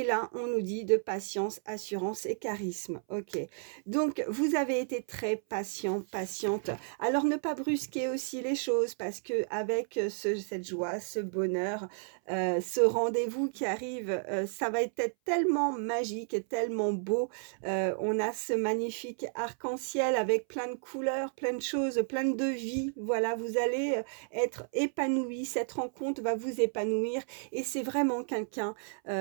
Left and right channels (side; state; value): left; silent; 56 dB below the other